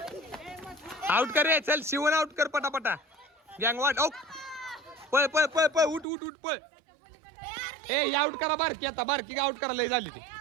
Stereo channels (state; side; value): drops out; left; at 6.1 s